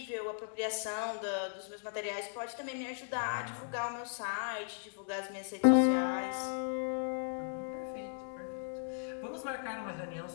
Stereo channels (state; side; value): silent; right; digital silence